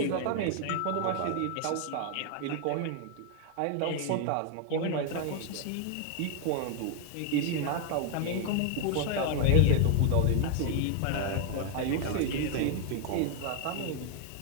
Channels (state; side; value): different; both; correlation 0.01